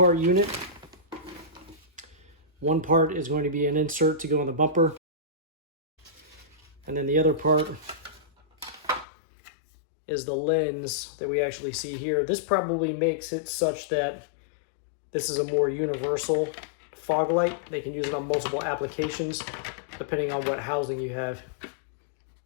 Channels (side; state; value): right; drops out; at 9.1 s